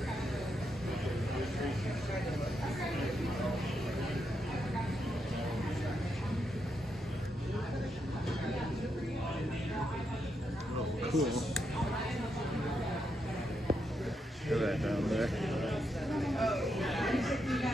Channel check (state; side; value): normal; both; correlation 0.82